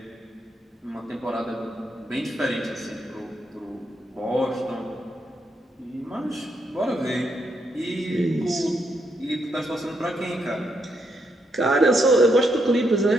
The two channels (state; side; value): normal; both; correlation 0.78